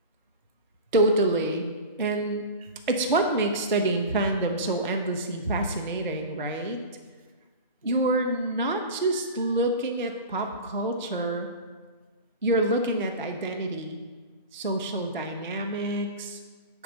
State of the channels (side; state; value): both; inverted; correlation -0.30